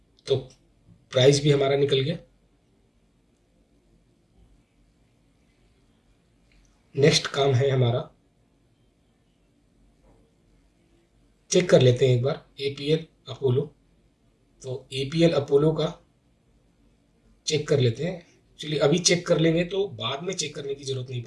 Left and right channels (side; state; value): both; identical; correlation 1.00